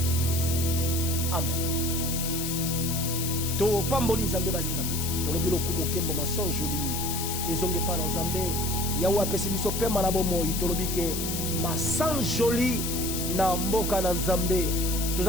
Nous disons Amen. To pamboli nzambe balingami. To lobi lokumo kembo masan joli. Ezonge pa na nzambe. Yawa pesi biso pema na bomoi. To lobi ke masan joli na mboka na nzambe.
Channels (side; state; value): left; noise; hiss, 3 dB below the sound